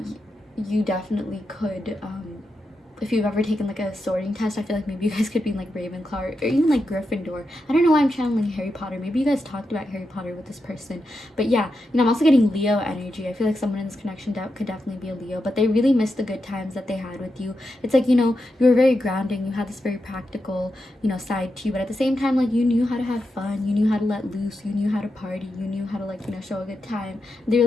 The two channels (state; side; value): normal; both; correlation 0.87